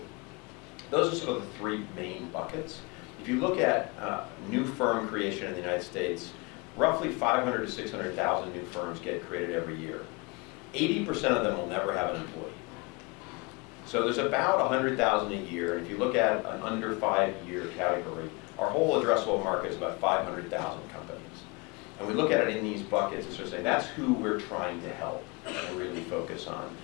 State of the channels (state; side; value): quieter; right; 27.4 dB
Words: those are sort of the three main buckets. If you look at new firm creation in the United States, roughly 500 to 600,000 new firms get created every year. 80% of them will never have an employee. So there's about 100,000 a year, and if you look at an under 5-year category, our whole addressable market is about 500,000 companies. And we look at it in these buckets and sort of say, that's who we're trying to help and really focus on.